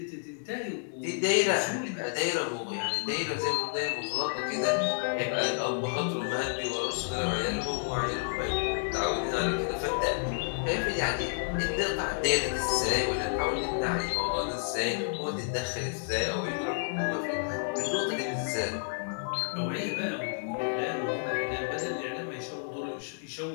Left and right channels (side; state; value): right; silent; digital silence